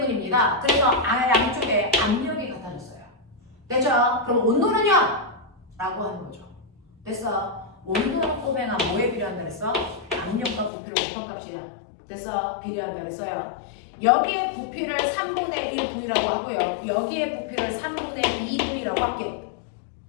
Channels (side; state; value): right; drops out; at 10.7 s